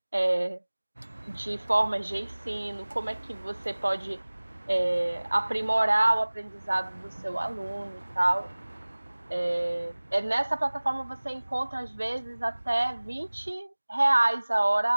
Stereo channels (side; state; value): both; inverted; correlation -1.00